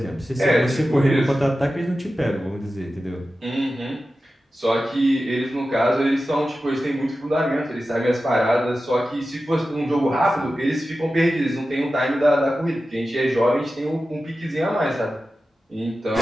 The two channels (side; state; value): both; normal; correlation 0.93